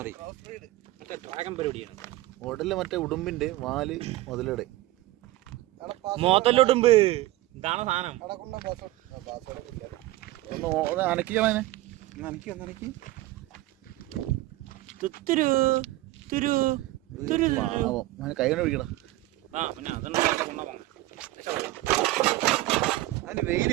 ഡ്രാഗൺ പരിപാടിയാണ്. ഉടല് മറ്റേ ഉടുമ്പിന്റെ, വാല് മുതലയുടെ. മോത്തല്ലുടുമ്പ് ഇതാണ് സാധനം. ഒന്ന് അനക്കിക്കളെ. കൈ കൊണ്ട് പിടിക്കണം. അതിന് വെയില്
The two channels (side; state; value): left; quieter; 17.4 dB